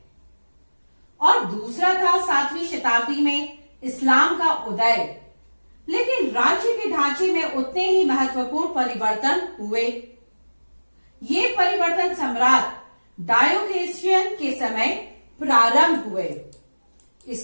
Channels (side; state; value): both; inverted; correlation -1.00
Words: और दूसरा था 7वीं शताब्दी में इस्लाम का उदय। लेकिन राज्य के ढांचे में उतने ही महत्वपूर्ण परिवर्तन हुए। ये परिवर्तन सम्राट डायोक्लेशियन के समय प्रारंभ हुए।